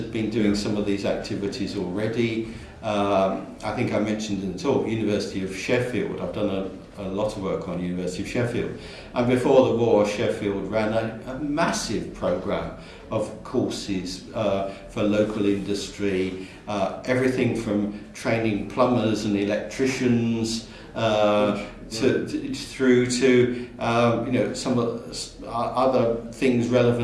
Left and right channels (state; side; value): identical; both; correlation 1.00